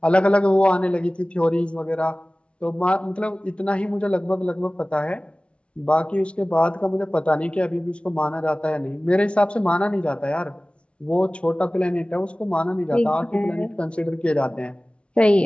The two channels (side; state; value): right; late; 0.060 ms